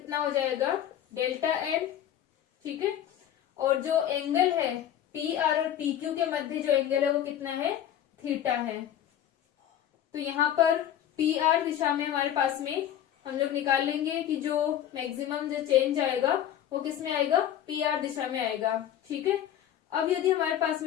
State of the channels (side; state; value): right; quieter; 10.8 dB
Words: हो जाएगा, डेल्टा एन। ठीक है, और जो एंगल है पी आर और पी क्यू के मध्य जो एंगल है वो कितना है, थीटा है। तो यहाँ पर पी आर दिशा में हमारे पास में हम लोग निकाल लेंगे कि जो मैक्सिमम जो चेंज आएगा वो किस में आएगा, पी आर दिशा में आएगा। ठीक है, अब यदि हमारे पास